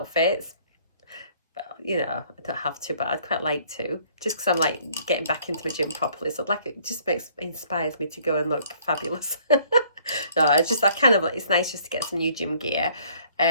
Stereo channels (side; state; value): both; inverted; correlation -0.60